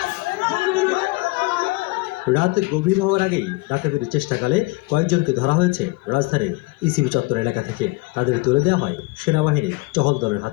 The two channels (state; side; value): quieter; right; 23.7 dB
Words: রাত গভীর হওয়ার আগেই ডাকাতির চেষ্টাকালে কয়েকজনকে ধরা হয়েছে রাজধানীর ইসিবি চত্বর এলাকা থেকে। তাদের তুলে দেওয়া হয় সেনাবাহিনীর টহল দলের